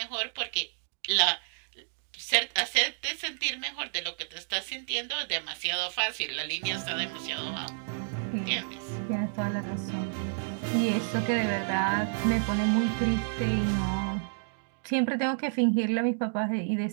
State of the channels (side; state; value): left; silent; digital silence